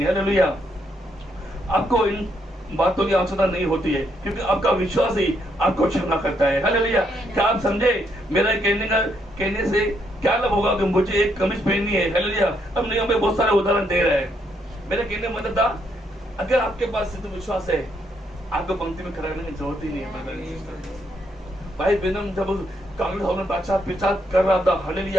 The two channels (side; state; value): both; normal; correlation 0.75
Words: हालेलुया। आपको इन बातों की आवश्यकता नहीं होती है, क्योंकि आपका विश्वास ही आपको क्षमा करता है। हालेलुया। क्या आप समझे मेरा कहने से क्या लाभ होगा कि मुझे एक कमीज पहननी है। हालेलुया। अब नहीं, हमें बहुत सारे उदाहरण दे रहा है। मेरा कहने मतलब था, अगर आपके पास सिद्ध विश्वास है, आपको पंक्ति में खड़ा रहने की जरूरत ही नहीं है। भाई बेनम जब कांग्रेस हाउस में प्रचार कर रहा था,